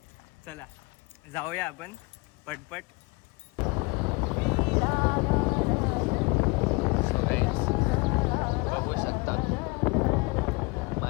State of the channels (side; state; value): right; quieter; 26.5 dB